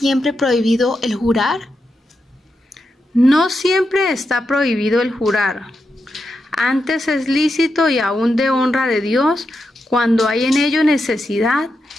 prohibido el jurar? No siempre está prohibido el jurar. Antes es lícito y aún de honra de Dios cuando hay en ello necesidad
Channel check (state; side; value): normal; both; correlation 0.86